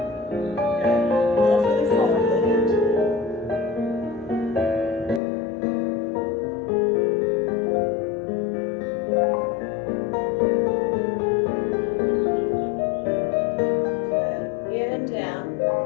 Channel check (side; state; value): right; drops out; at 5.2 s